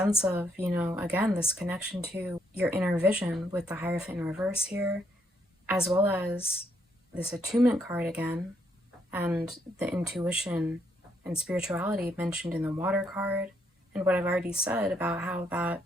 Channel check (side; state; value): both; normal; correlation 0.74